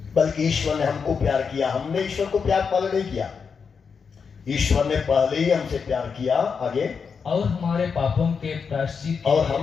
बल्कि ईश्वर ने हमको प्यार किया। हमने ईश्वर को प्यार पहले नहीं किया, ईश्वर ने पहले ही हमसे प्यार किया। आगे, और हमारे पापों के प्रायश्चित के और लिए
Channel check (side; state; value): right; quieter; 5.8 dB